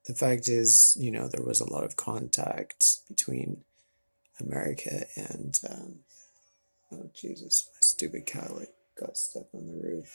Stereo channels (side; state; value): both; inverted; correlation -1.00